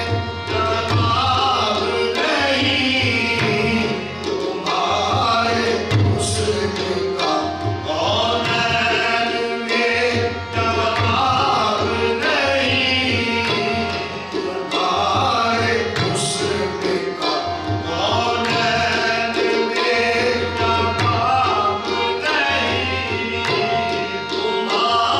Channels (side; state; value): both; identical; correlation 1.00